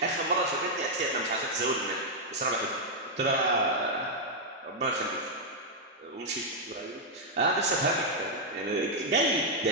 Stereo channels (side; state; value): both; normal; correlation -0.03